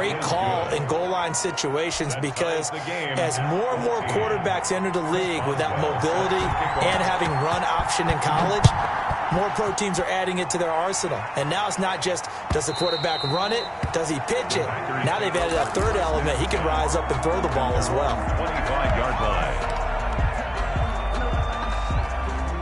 call in goal line situations because as more and more quarterbacks enter the league with that mobility and having run option in college, more pro teams are adding it to their arsenal. And now it's not just, does the quarterback run it? Does he pitch it? Now they've added a third element. He can rise up and throw the ball as well. 25-yard line.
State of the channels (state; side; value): identical; both; correlation 1.00